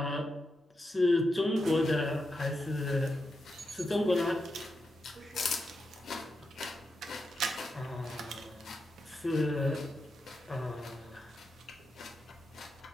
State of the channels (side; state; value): both; normal; correlation 0.86